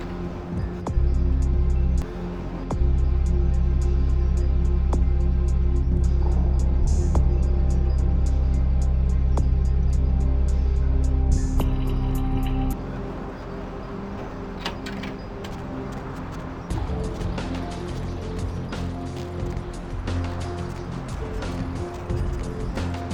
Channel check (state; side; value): identical; both; correlation 1.00